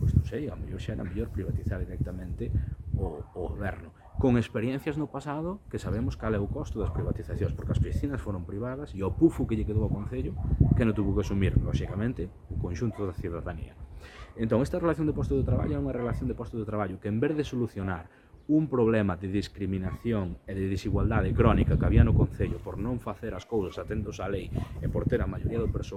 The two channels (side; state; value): both; identical; correlation 1.00